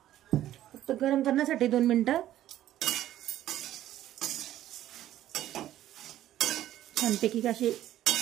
फक्त गरम करण्यासाठी 2 मिनिटं। छानपैकी असे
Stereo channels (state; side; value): quieter; left; 12.9 dB